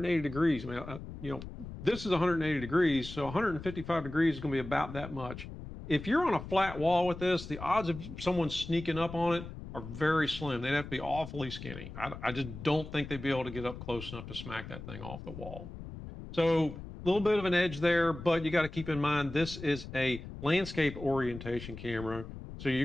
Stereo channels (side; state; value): left; noise; rumble, 11 dB below the sound